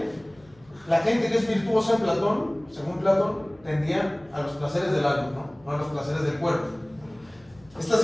la gente que es virtuosa en Platón, según Platón, tendía a los placeres del alma, ¿no? No a los placeres del cuerpo. Esta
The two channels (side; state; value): left; noise; hum, 29 dB below the sound